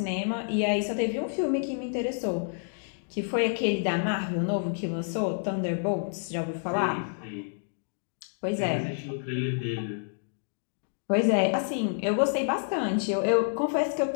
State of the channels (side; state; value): right; silent; digital silence